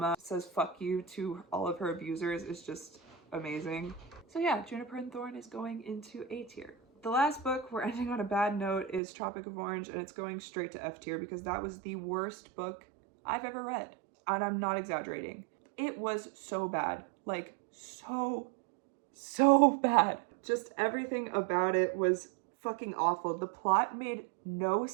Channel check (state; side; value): drops out; left; at 9.0 s